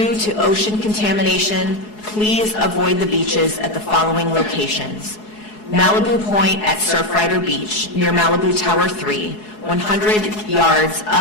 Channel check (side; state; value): right; late; 4.7 ms